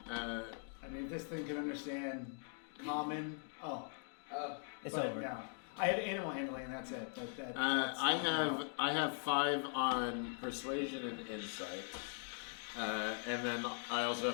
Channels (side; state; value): right; silent; 50 dB below the other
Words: I mean, this thing can understand common. Oh, It's but over. no. I have animal handling, and that's it. That's I have 5 on persuasion and insight, and then I also